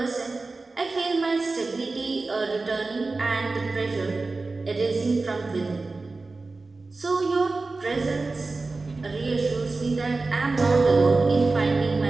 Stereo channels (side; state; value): left; quieter; 3.6 dB